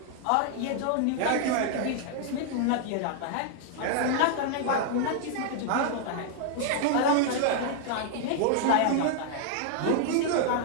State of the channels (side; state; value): both; different; correlation 0.00